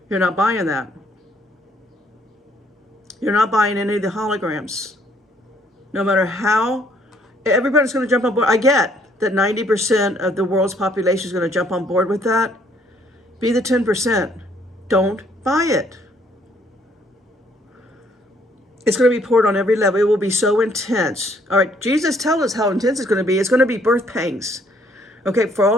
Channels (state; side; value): normal; both; correlation 0.65